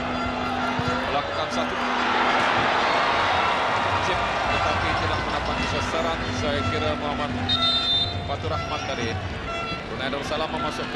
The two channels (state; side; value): identical; both; correlation 1.00